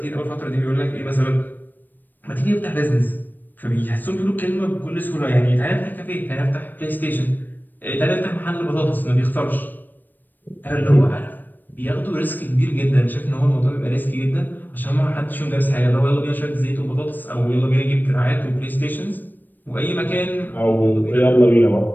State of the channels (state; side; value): late; right; 0.090 ms